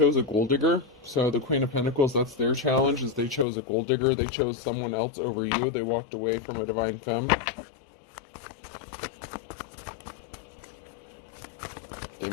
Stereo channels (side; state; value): right; drops out; at 3.5 s